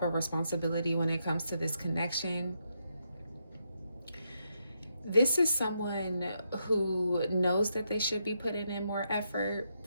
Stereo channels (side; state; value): both; inverted; correlation -0.80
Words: of responsibility when it comes to this connection. This is someone who knows that they should be putting in more effort